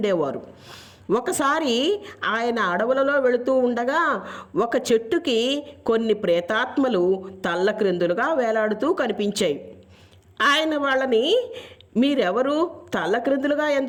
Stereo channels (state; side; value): identical; both; correlation 1.00